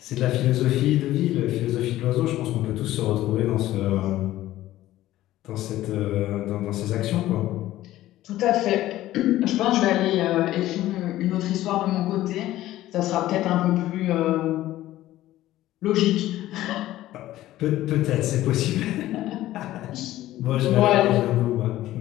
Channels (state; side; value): quieter; right; 14.9 dB